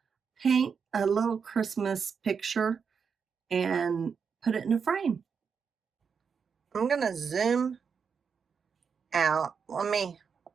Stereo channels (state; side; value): quieter; left; 6.2 dB